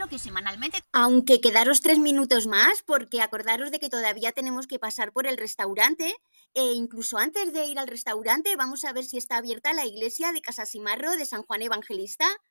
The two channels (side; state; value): both; inverted; correlation -1.00